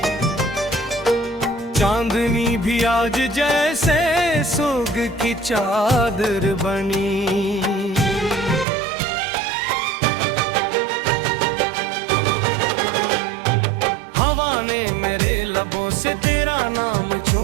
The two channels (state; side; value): drops out; left; at 8.7 s